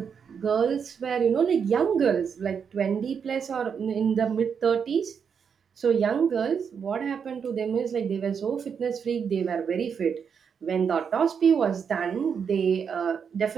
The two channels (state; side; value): quieter; left; 6.8 dB